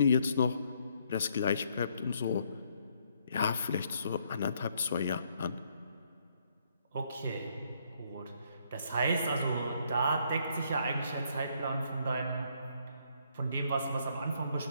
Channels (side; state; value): both; inverted; correlation -0.70